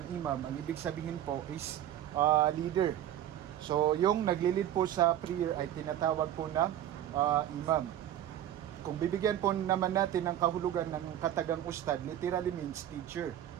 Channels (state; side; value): quieter; left; 11.6 dB